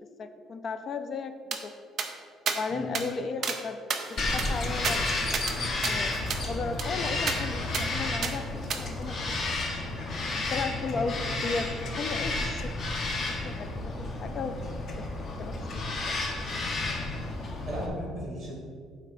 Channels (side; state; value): both; normal; correlation 0.70